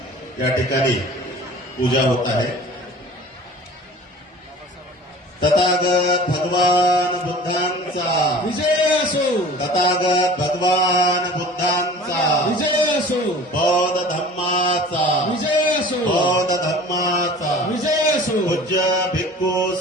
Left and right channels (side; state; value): both; normal; correlation 0.43